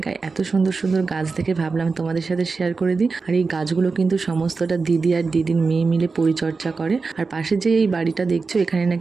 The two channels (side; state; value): left; quieter; 4.4 dB